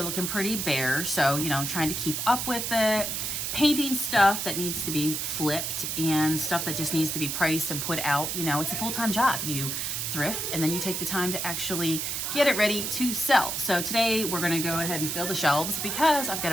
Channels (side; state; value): right; noise; hiss, 2 dB below the sound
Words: looking pretty bare, so you know, I'm trying to keep up with it. Painting stuff that needs to be flipped and stuff that just needs to be priced and put out. You know, it's a full-time job. You thrift and then you take the time to actually get it ready to sell. So today we're gonna go ahead and fill the shelves because I've got